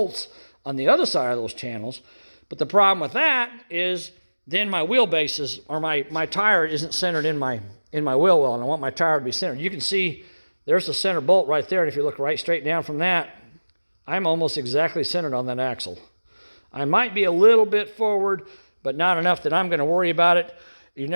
on the other side of those channels. But the problem with that is then my wheelbase is, or my tire isn't centered in my wheel well, and I want my tire to be centered. You can see there's the center bolt right there, and if you look right straight down from that, I'm almost exactly centered on that axle. I might be a little bit forward, but not enough that I'm going to worry about it. You're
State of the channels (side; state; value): both; inverted; correlation -1.00